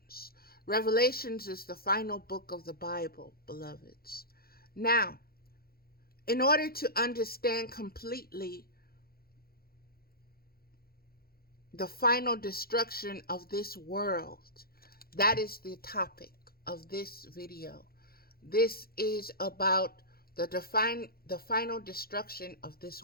Revelations is the final book of the Bible, beloveds. Now, in order to understand completely the final destruction of this world, that is the topic of this video. This is about the final destruction of this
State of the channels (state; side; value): late; right; 0.44 ms